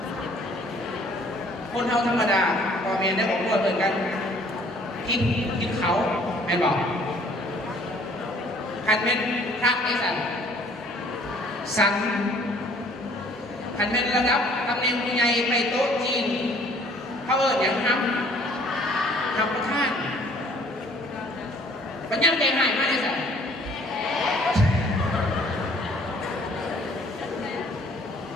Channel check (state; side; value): normal; both; correlation 0.57